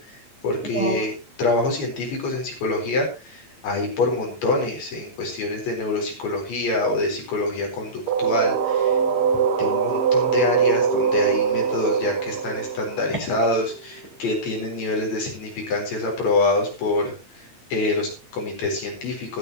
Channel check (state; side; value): late; right; 8.6 ms